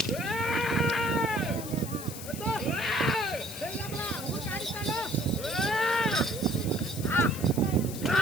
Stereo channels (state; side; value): noise; left; hiss, 11 dB below the sound